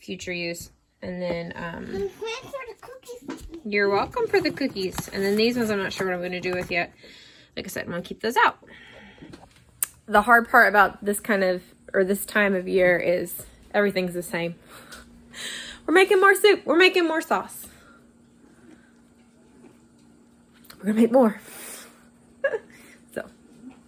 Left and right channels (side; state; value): both; identical; correlation 1.00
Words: use. And then you're welcome for the cookies. And then these ones I'm not sure what I'm going to do with yet. Like I said, I'm going to keep those out. The hard part about this this time of year is everything's the same. We're making more soup. We're making more sauce. we're gonna make more. So